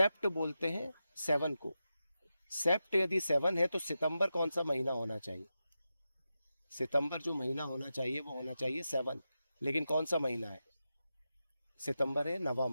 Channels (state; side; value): inverted; both; correlation -0.90